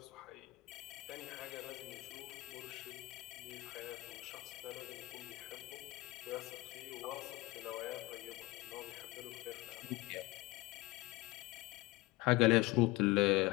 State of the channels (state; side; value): quieter; right; 20.8 dB